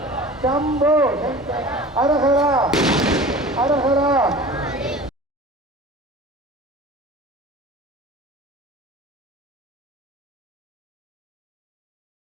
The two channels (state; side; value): normal; both; correlation 0.39